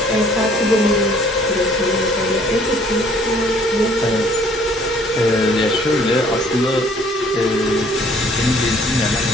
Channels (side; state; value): both; normal; correlation 0.59